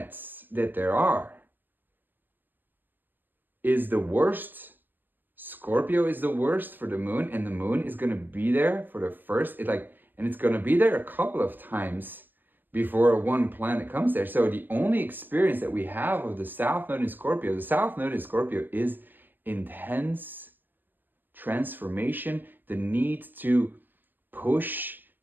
that there are, is the worst. Scorpio is the worst for the moon, and the moon is going to be there for the first, and it's going to be there a couple of times before one planet comes there. So the only experience that we have of the south node in Scorpio, is intense transformation, the need to push,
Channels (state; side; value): late; left; 0.092 ms